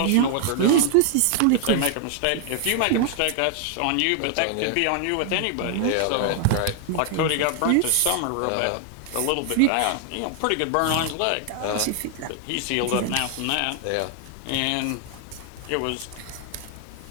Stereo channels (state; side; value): different; both; correlation 0.00